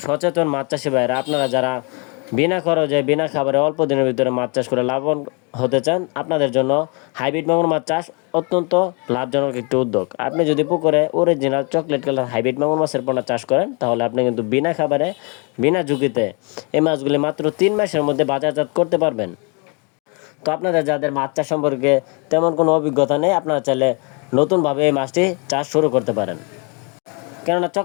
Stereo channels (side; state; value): right; quieter; 33.8 dB